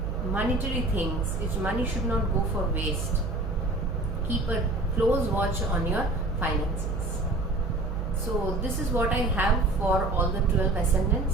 Monetary things, money should not go for waste. Keep a close watch on your finances. So this is what I have for all the 12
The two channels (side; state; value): right; noise; hum, 4 dB below the sound